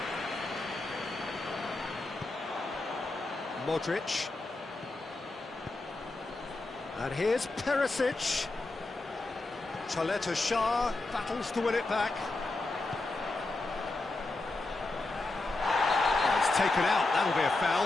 Modric. And here's Perisic. Chaleta Shah battles to win it back. Oh, it's taken out, that'll be a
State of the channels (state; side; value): quieter; right; 3.1 dB